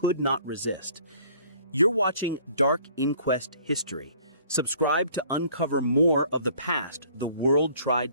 not resist. You're watching Dark Inquest History. Subscribe to uncover more of the past the world tried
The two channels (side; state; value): both; inverted; correlation -0.56